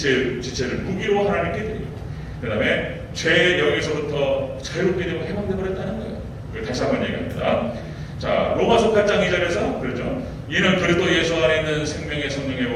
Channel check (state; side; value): identical; both; correlation 1.00